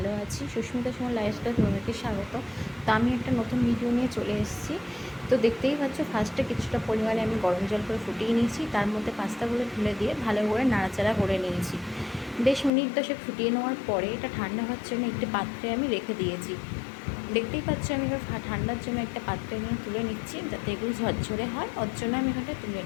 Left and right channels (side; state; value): right; drops out; at 12.7 s